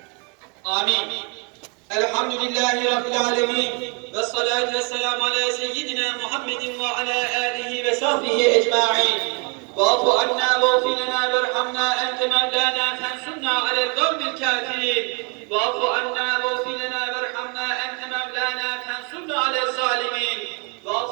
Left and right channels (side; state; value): left; quieter; 32.1 dB